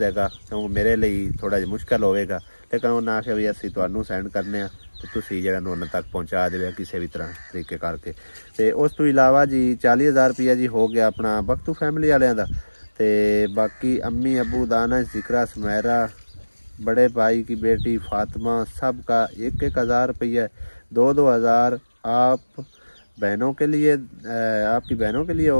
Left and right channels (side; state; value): both; inverted; correlation -1.00